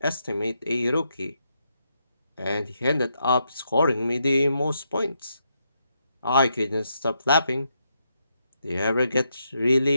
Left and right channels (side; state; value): both; inverted; correlation -0.80